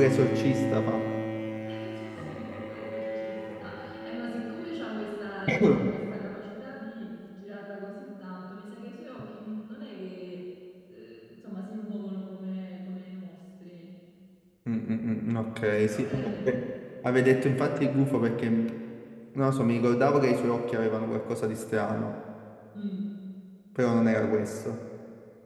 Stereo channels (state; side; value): identical; both; correlation 1.00